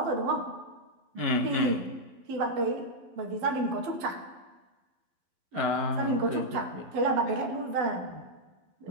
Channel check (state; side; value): late; left; 12 ms